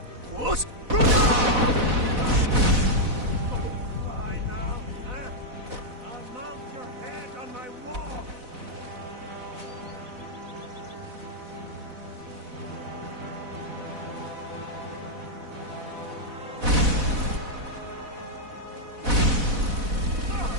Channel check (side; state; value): left; late; 4.0 ms